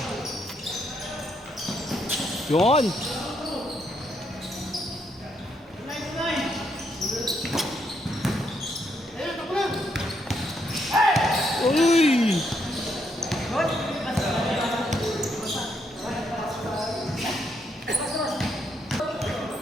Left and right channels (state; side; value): normal; both; correlation 0.76